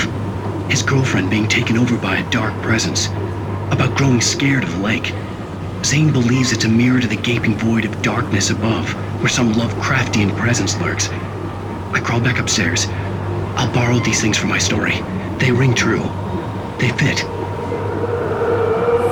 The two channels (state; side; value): identical; both; correlation 1.00